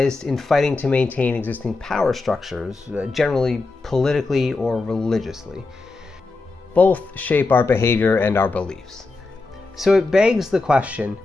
in fighting to maintain existing power structures, generally politically or religiously. Both shape our behavior and our beliefs. So it begs the question,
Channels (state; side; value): quieter; right; 3.5 dB